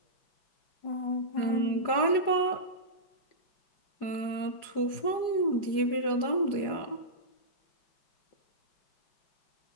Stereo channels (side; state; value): right; late; 4.9 ms